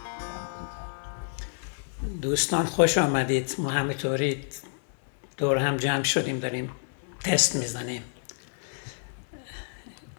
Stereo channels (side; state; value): right; silent; 59 dB below the other